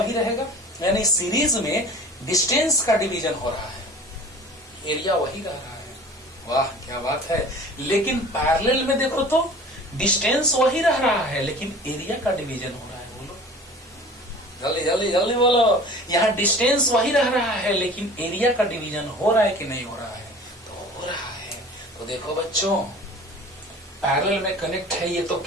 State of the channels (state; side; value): normal; both; correlation 0.43